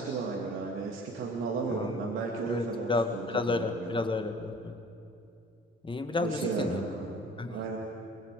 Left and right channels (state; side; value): normal; both; correlation 0.48